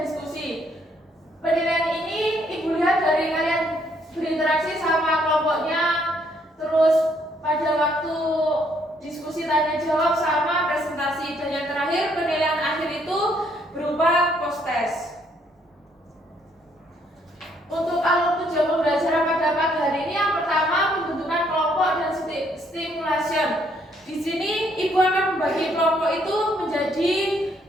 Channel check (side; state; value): both; normal; correlation 0.69